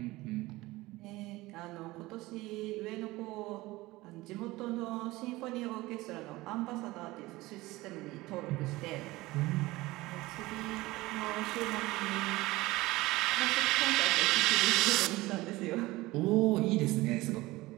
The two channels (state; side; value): quieter; left; 19.7 dB